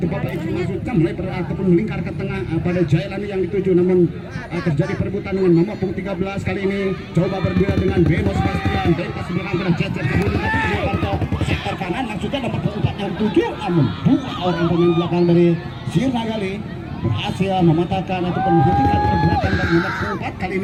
Bapak Ibu maksudnya melebar ataupun melingkar ke tengah pada Jailani yang dituju, namun terjadi perebutan dengan nomor punggung 13. Kali ini coba berduel dengan Beno Sebastian. Bebas belakang dengan Cecep sektor kanan maksudnya nomor punggung 4 yang dituju, namun 2 orang pemain belakang dari Sirnagali berhasil mematahkan ataupun menghentikan pergerakan dari nomor 4. Kali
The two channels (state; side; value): identical; both; correlation 1.00